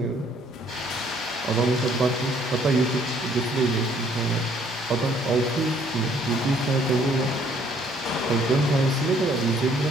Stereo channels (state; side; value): normal; both; correlation 0.63